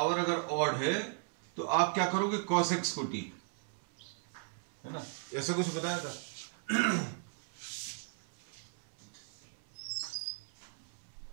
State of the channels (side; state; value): left; silent; 54 dB below the other